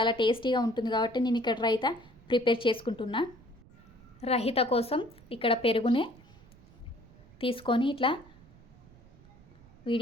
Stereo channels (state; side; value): noise; right; rumble, 24 dB below the sound